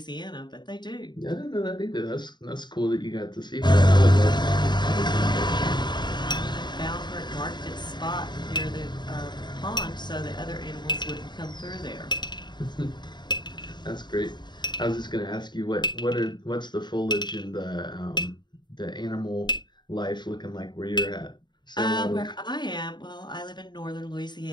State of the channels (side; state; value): right; late; 0.21 ms